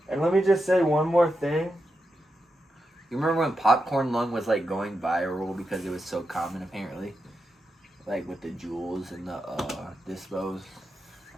And let me just say one more thing. You remember when popcorn lung was like going viral because it was so common apparently? Like with the jewels and the dispos.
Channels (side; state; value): both; normal; correlation 0.87